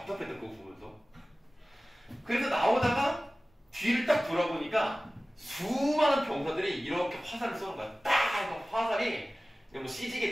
그거 보면서. 그래서 나오다가 뒤를 딱 돌아보니까 수많은 병사들이 이렇게 화살을 쏘는 거야. 딱 화살이 뭐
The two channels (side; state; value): both; normal; correlation 0.97